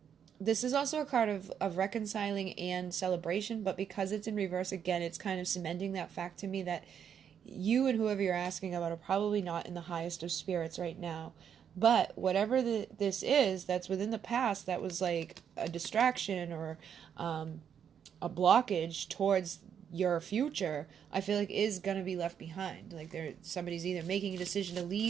This is also a card of reconciling and celebration, but because it's in reverse, again, it's kind of cementing that fact to me that you and whoever you're asking about are probably not in the highest of spirits right now. But whatever this is that's within the past that was like a distraction or a blockage towards your future, I feel like is going to be left behind. Like somebody's either making a decision to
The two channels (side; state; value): left; quieter; 8.2 dB